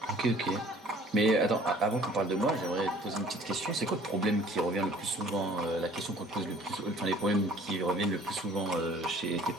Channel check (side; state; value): both; normal; correlation 0.52